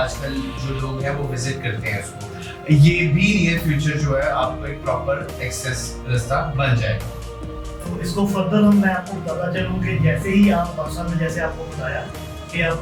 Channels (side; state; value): both; identical; correlation 1.00